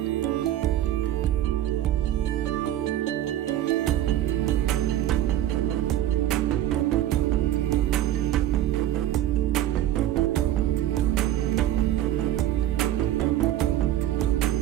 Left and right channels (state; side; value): quieter; left; 12.6 dB